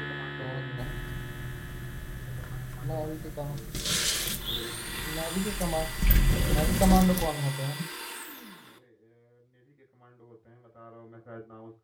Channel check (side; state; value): both; identical; correlation 1.00